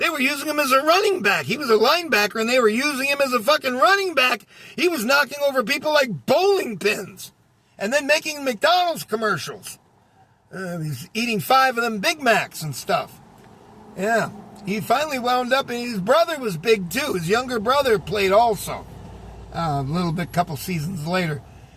were using him as a running back. He was a linebacker, and they were using him as a fucking running back. He was knocking over people like bowling pins and then making McDonald's commercials. He's eating 5 of them Big Macs and stuff. Yeah. He finally wound up, and his brother was big, too. His younger brother played also. A little bit, couple seasons later.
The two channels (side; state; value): both; identical; correlation 1.00